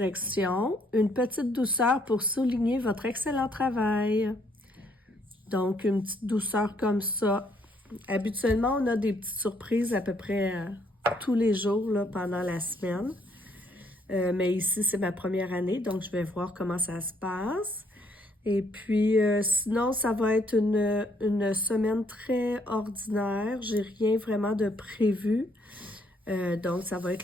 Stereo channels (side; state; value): both; normal; correlation 0.69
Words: Une petite douceur pour souligner votre excellent travail. Donc, une petite douceur comme ça. Habituellement, on a des petites surprises à peu près tous les jours là, pendant la semaine. Mais ici, c'est ma première année, donc je vais voir comment ça se passe. Et puis, sinon, ça va être une semaine très ordinaire. J'ai rien vraiment de prévu. Donc, ça va